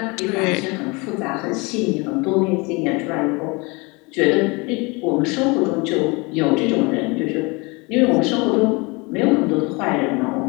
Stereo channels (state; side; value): quieter; right; 27.3 dB